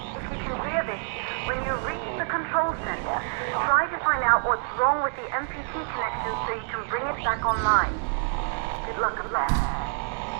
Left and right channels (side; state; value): left; silent; 60 dB below the other